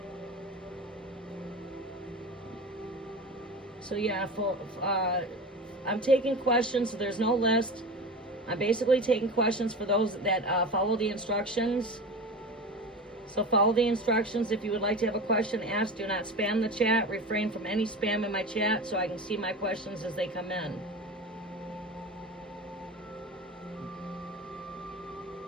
So yeah, I'm taking questions, so there's no list. I'm basically taking questions for those that follow the instructions. So follow the instructions. If you would like to have a question asked, do not spam the chat. Refrain from any spam in my chat so I can see my questions as they come in.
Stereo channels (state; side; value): normal; both; correlation 0.30